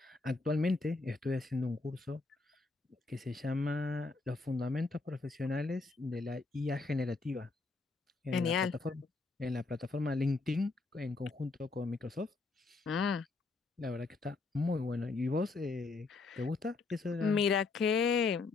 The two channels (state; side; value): quieter; right; 3.9 dB